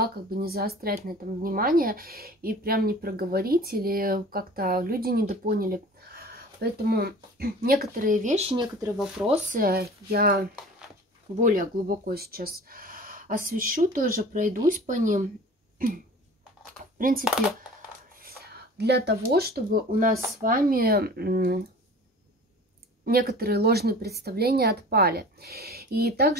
не заострять на этом внимание и прям не проговорить, или как-то люди недопоняли. Поэтому некоторые вещи, некоторые вопросы я более глубоко сейчас освещу, тоже пройдусь по ним. В принципе, для того, чтобы у нас с вами некоторые ложные представления отпали. И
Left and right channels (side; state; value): both; normal; correlation 0.42